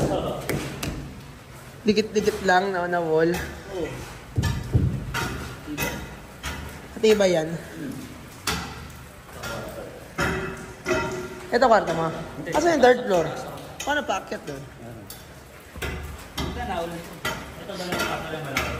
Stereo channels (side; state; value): both; identical; correlation 1.00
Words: Dikit-dikit lang na wall. Pati ba yan? Ito kwarto mo. Kasi yung third floor. Paano paakyat doon? Ito na ulit. Ito ba lang kwarto lang malaki?